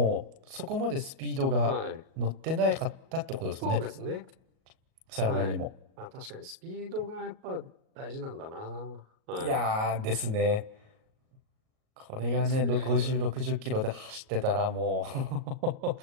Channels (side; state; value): left; late; 37 ms